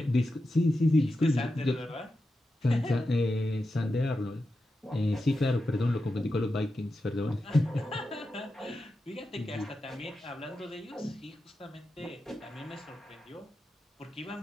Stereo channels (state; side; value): normal; both; correlation 0.90